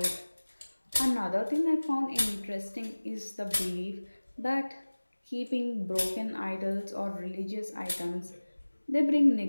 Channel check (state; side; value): inverted; both; correlation -1.00